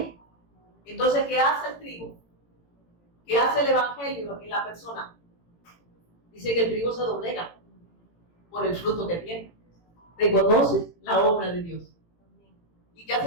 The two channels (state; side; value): late; right; 18 ms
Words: Entonces, ¿qué hace el trigo? ¿Qué hace el Evangelio en la persona? Dice que el trigo se doblega por el fruto que tiene. Reconoce la obra de Dios. ¿Y qué